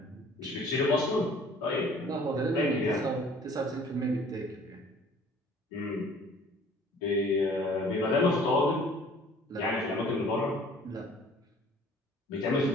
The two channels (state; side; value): normal; both; correlation 0.52